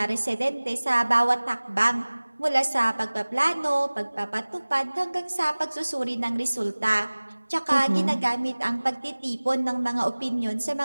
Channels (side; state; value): both; inverted; correlation -1.00